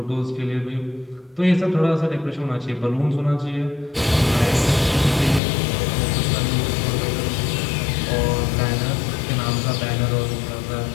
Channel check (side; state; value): right; drops out; at 5.4 s